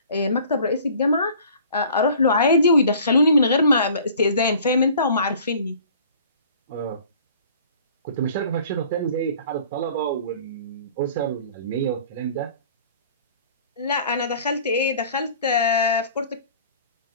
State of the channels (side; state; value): both; inverted; correlation -0.50